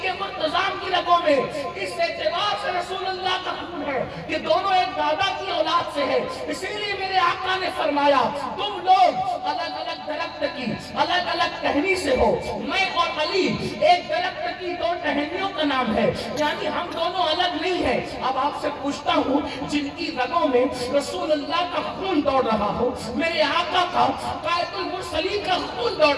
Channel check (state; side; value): identical; both; correlation 1.00